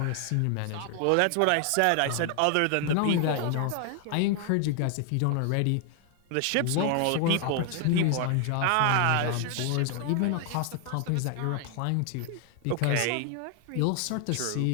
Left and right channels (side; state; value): both; different; correlation 0.00